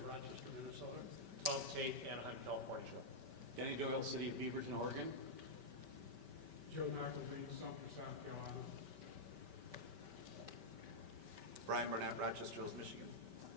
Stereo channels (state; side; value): late; left; 5.2 ms